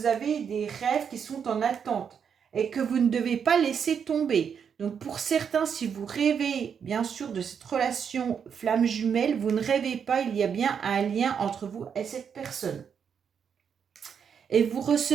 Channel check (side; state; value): left; quieter; 7.2 dB